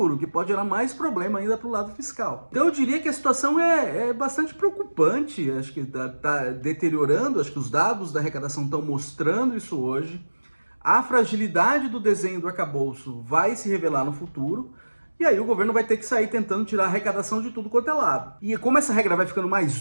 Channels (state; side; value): inverted; both; correlation -1.00